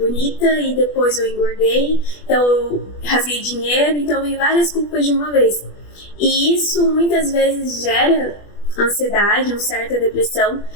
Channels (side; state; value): right; late; 20 ms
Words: e depois eu engordei, então eu rasguei dinheiro, então vem várias culpas de uma vez. E isso muitas vezes gera ansiedade, uma certa depressão.